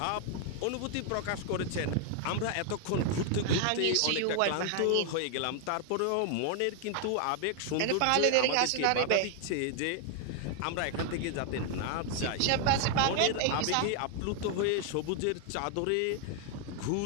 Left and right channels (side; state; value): both; different; correlation 0.00